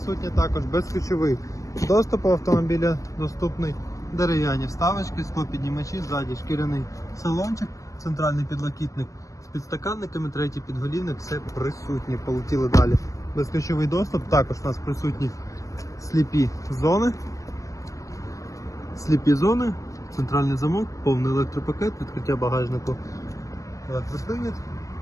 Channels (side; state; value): right; late; 0.16 ms